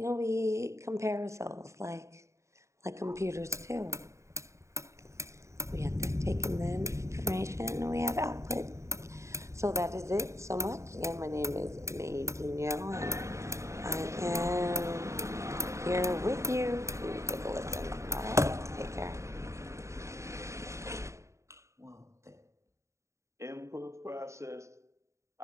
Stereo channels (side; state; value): left; late; 0.14 ms